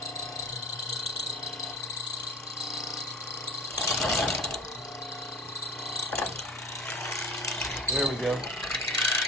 There we go.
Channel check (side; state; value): both; normal; correlation 0.38